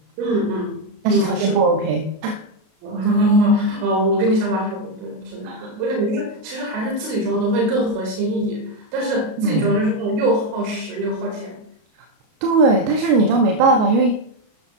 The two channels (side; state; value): left; late; 33 ms